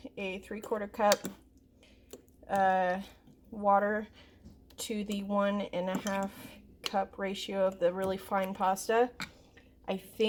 a 3/4 cup water to the 1.5 cup ratio of the really fine pasta. I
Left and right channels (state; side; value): identical; both; correlation 1.00